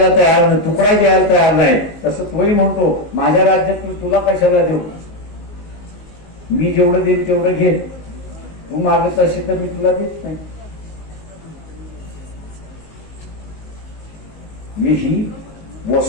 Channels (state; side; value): late; right; 19 ms